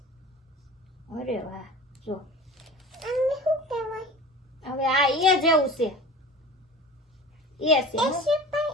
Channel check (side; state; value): both; normal; correlation 0.37